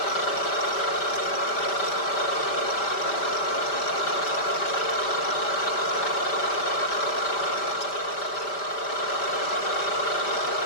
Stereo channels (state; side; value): late; right; 5.0 ms